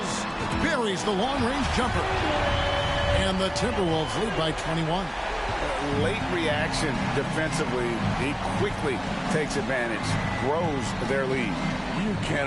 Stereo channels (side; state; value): both; identical; correlation 1.00